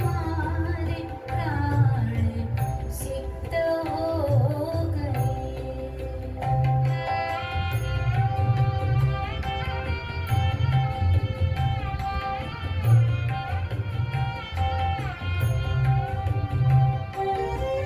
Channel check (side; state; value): both; identical; correlation 1.00